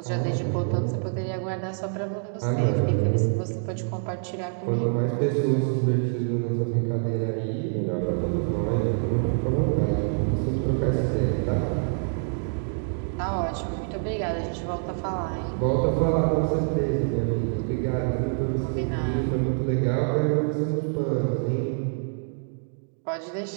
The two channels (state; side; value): silent; left; 61 dB below the other